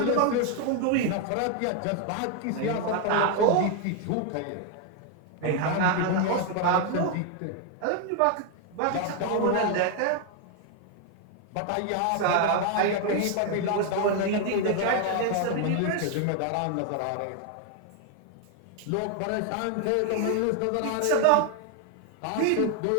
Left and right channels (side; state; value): both; different; correlation 0.00